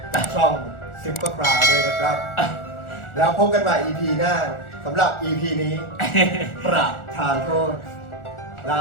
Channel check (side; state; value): right; late; 1.4 ms